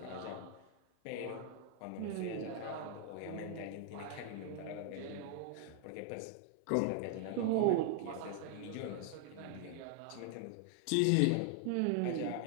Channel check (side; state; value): both; different; correlation 0.00